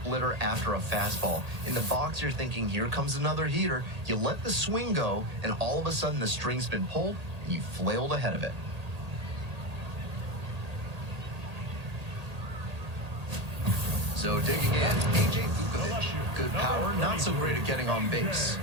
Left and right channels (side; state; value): left; late; 1.8 ms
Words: after a fastball. In the box, you're thinking, here comes another heater. You let the swing go, and all of a sudden the string's been pulled, and you flailed ahead of it. So digging in, A.J. Vukovic. Good power, not so great at getting on base.